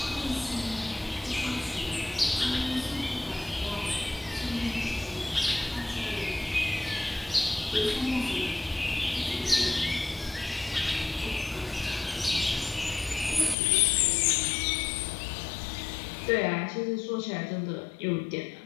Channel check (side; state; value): right; drops out; at 13.6 s